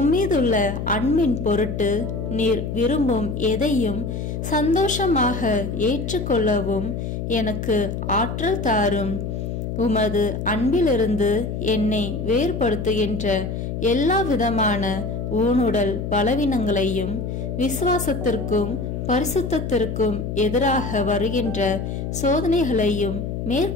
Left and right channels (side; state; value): left; noise; hum, 4 dB below the sound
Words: அன்பின் பொருட்டு நீர் விரும்பும் எதையும் சந்தோஷமாக ஏற்றுக்கொள்ளவும் எனக்கு ஆற்றல் தாரும். உமது அன்பிலிருந்து என்னை வேறுபடுத்துகின்ற எல்லா விதமான ஊனுடல் பலவீனங்களையும் விசுவாசத்திற்கும் பரிசுத்தத்திற்கும் எதிராக வருகின்ற சோதனைகளையும்